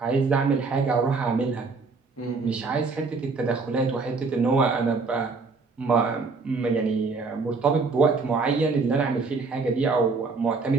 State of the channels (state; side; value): quieter; left; 4.3 dB